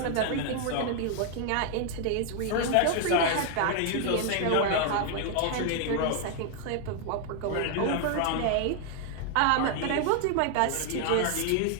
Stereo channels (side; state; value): both; different; correlation 0.00